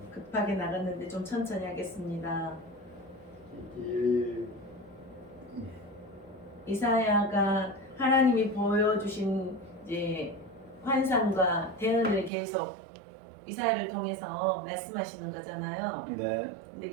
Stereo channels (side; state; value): left; drops out; at 12.3 s